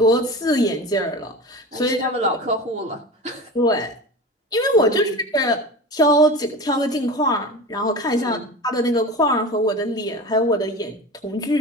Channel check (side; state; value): both; normal; correlation 0.31